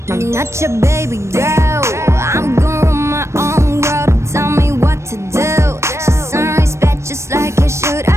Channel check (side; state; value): left; late; 0.13 ms